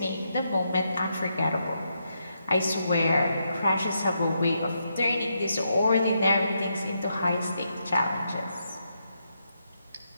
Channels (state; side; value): inverted; both; correlation -0.81